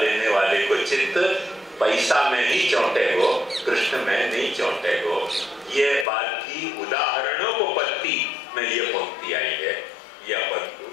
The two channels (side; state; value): right; drops out; at 6.1 s